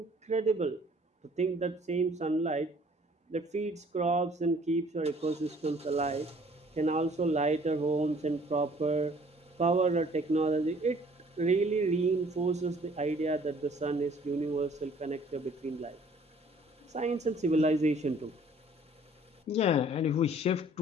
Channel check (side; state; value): both; normal; correlation 0.56